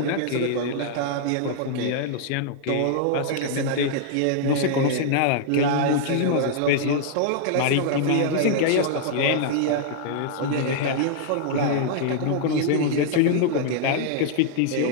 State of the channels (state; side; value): different; both; correlation -0.01